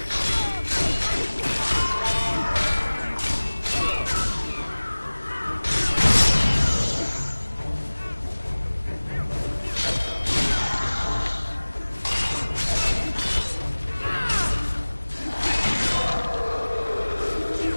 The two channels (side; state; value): both; inverted; correlation -1.00